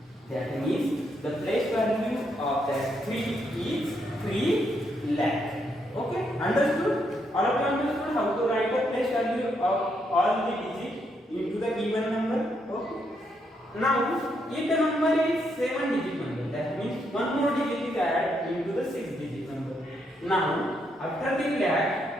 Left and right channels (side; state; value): both; normal; correlation 0.77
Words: That means the place value of that 3 is 3 lakh. Okay, understood? All of you understood how to write the place value of all the digits into the given number? Okay. Now, if the number is 7-digit number, that means one more digit is added into the 6-digit number. Now, after the